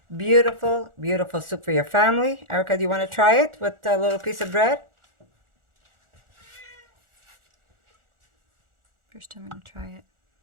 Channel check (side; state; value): left; late; 1.4 ms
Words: Beautiful, beautiful soup for your family. Erica, do you want to try it with a little piece of bread? First time I'm going to try it.